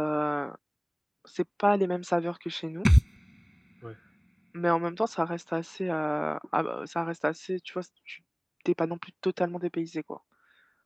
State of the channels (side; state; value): both; identical; correlation 1.00